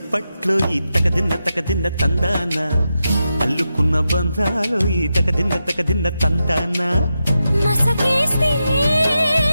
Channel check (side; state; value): both; inverted; correlation -0.88